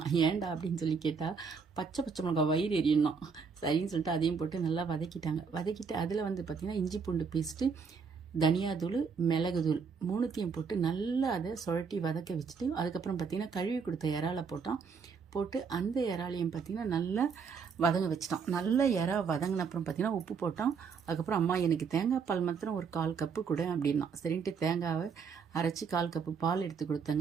ஏன்டா அப்படின்னு சொல்லி கேட்டால் பச்சை மிளகாய் வயிறு எரியணும் சரின்னு சொல்லிட்டு அதையும் போட்டு நல்லா வதக்கிட்டாங்க. வதக்கிட்டு அதில் வந்து பார்த்திங்கன்னா இஞ்சி பூண்டு பேஸ்ட்டு, தனியாத்தூள், மிளகுத்தூள் மூணுத்தையும் போட்டு நல்லா அதை சுழட்டி வதக்க வச்சுட்டு அதுக்கப்புறம் பார்த்திங்கன்னா கழுவி கொடுத்த இறாலை போட்டு அந்த இறாலையும் பார்த்திங்கன்னா நல்லா வதங்க வச்சிட்டான். நல்லா இறா வதங்கின அப்புறம் பார்த்திங்கன்னா உப்பு போட்டான். அதுக்கப்புறம் அம்மா எனக்கு தேங்காய் பால் மாத்திரம் ஒரு 1/4 கப்பு கொடு அப்படின்னா சரின்ட்டு தேங்காவை அரைச்சி 1/4 கப்பு பால் எடுத்து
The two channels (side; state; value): left; quieter; 5.8 dB